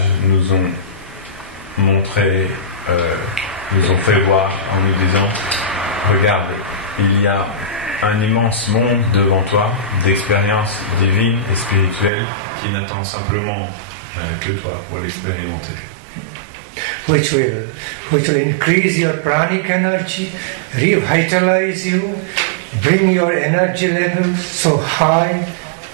nous ont montré, nous ont fait voir en nous disant, regarde, il y a un immense monde devant toi d'expériences divines et spirituelles qui n'attend simplement que toi pour l'expérimenter. Which will increase your pranic energy, revitalize you, bring your energy level so high,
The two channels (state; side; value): drops out; left; at 12.1 s